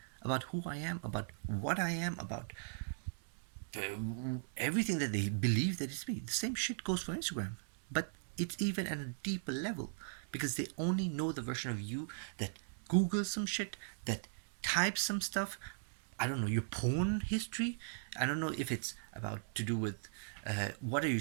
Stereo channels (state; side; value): silent; left; digital silence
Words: about who I am, about what I am, about everything that they believe that it's me. The same shit goes for Instagram, but it's even at a deeper level, because they only know the version of you that Googles some shit, that types some stuff. I don't know your porn history. I don't know if it's about to do with what are you